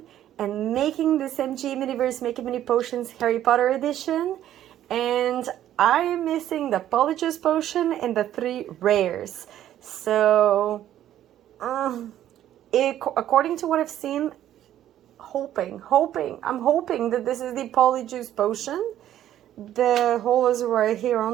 and making this MG Miniverse Make It Mini Potions Harry Potter edition. And I am missing the POLYJUICE potion and the 3 rares. So, according to what I've seen, I'm hoping that this is the POLYJUICE potion. The hole is right here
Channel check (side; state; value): left; quieter; 11.9 dB